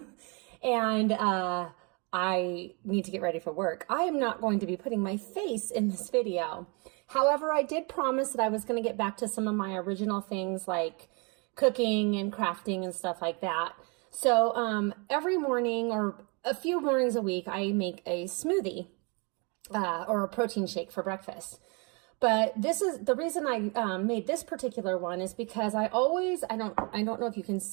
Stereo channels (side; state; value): left; quieter; 32.3 dB